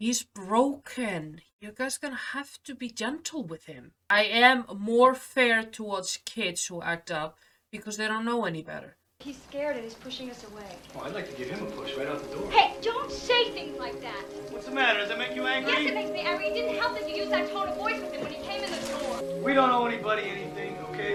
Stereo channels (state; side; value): identical; both; correlation 1.00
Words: broken. You guys gonna have to be gentle with him. I am more fair towards kids who act up because they don't know any better. He's scared and he's pushing us away. Oh, I'd like to give him a push right out the door. Hey, don't say things like that. What's the matter? Does that make you angry? Yes, it makes me angry. It didn't help that you used that tone of voice with him when he came in the door. We don't owe anybody anything, okay?